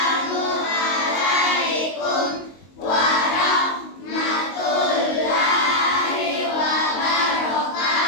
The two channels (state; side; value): late; right; 22 ms